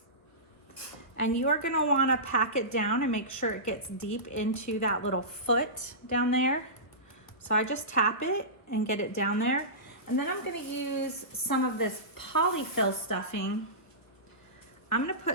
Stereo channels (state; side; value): late; right; 1.5 ms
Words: And you are gonna wanna pack it down and make sure it gets deep into that little foot down there. So I just tap it and get it down there. And then I'm gonna use some of this polyfill stuffing. I'm gonna